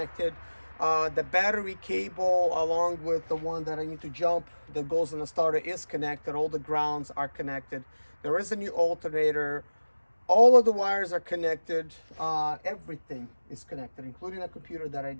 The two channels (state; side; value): inverted; both; correlation -1.00